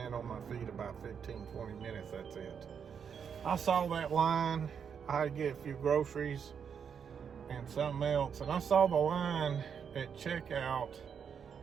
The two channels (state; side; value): quieter; left; 7.2 dB